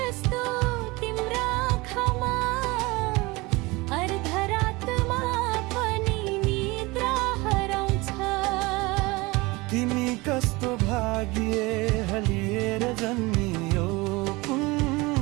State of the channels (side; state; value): left; quieter; 23.3 dB